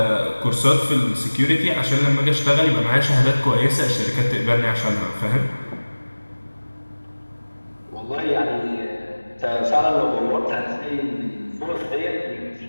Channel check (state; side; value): inverted; both; correlation -1.00